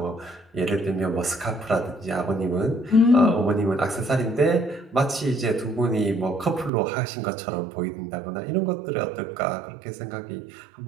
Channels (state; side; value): drops out; left; at 6.7 s